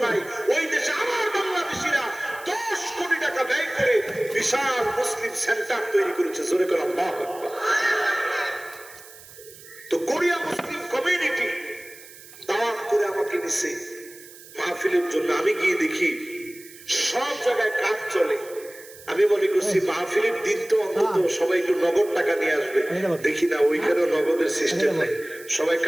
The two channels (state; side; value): noise; right; hiss, 19 dB below the sound